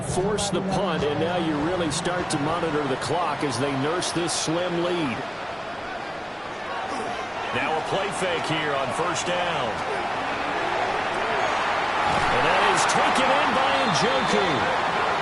forced the punt, and now you really start to monitor the clock as they nurse this slim lead. Now a play fake here on 1st down. And that is taken in by Njoku.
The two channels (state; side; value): identical; both; correlation 1.00